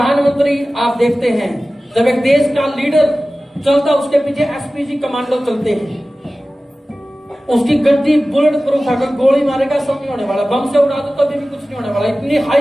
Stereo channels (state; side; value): normal; both; correlation 0.96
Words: आप देखते हैं, जब एक देश का लीडर चलता उसके पीछे एसपीजी कमांडो चलते हैं, उसकी गड्डी बुलेट प्रूफ है, गोली मारेगा सब नहीं होने वाला, बम से उड़ा दो तभी भी कुछ नहीं होने वाला, इतनी